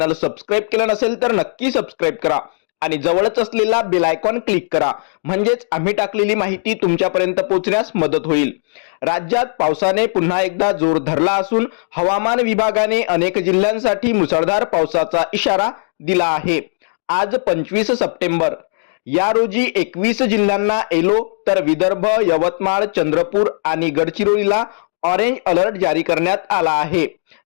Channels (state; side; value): silent; right; digital silence